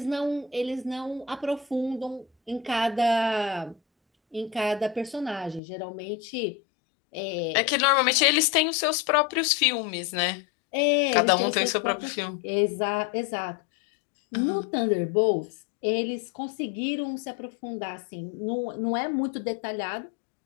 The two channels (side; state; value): right; drops out; at 5.6 s